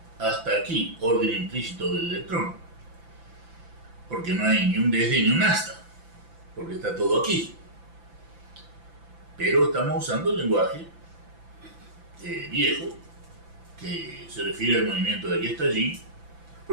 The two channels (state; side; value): late; left; 5.9 ms